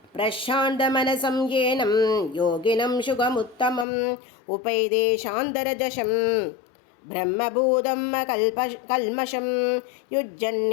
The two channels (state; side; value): drops out; right; at 3.9 s